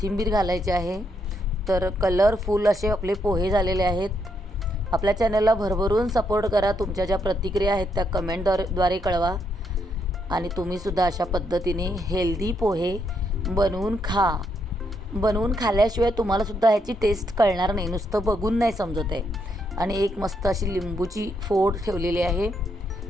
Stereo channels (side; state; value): both; normal; correlation 0.77